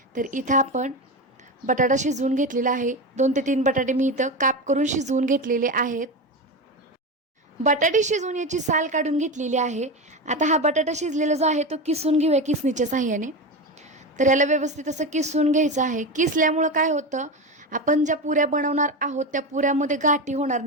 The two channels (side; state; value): both; normal; correlation 0.19